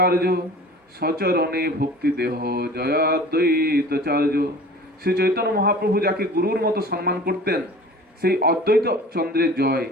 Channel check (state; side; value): normal; both; correlation 0.42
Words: আর্য সচরণে ভক্তি দেহ জয় অদ্বৈতাচার্য। শ্রী চৈতন্য মহাপ্রভু যাকে গুরুর মতো সম্মান করতেন সেই অদ্বৈত চন্দ্রের জয়।